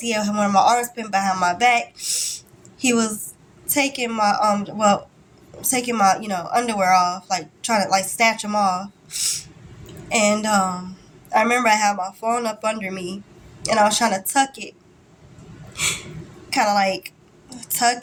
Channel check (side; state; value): both; identical; correlation 1.00